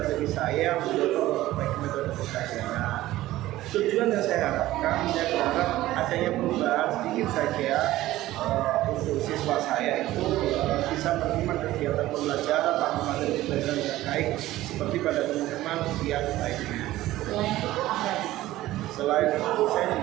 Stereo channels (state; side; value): quieter; left; 15.9 dB